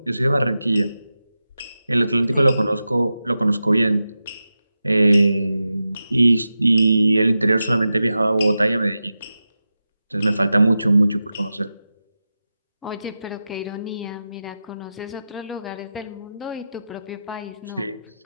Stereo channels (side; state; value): both; inverted; correlation -0.92